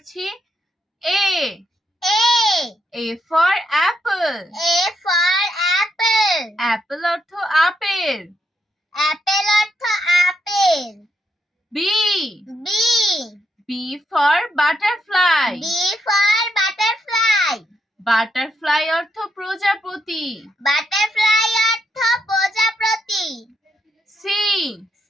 A A for apple. Apple অর্থ আপেল। B B for butterfly. Butterfly অর্থ প্রজাপতি। C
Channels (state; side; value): normal; both; correlation 0.79